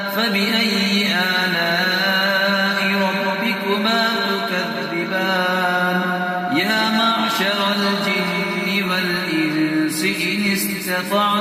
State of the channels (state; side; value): identical; both; correlation 1.00